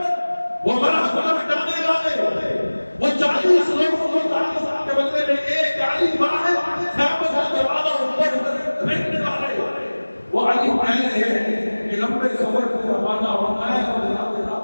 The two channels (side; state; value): both; inverted; correlation -1.00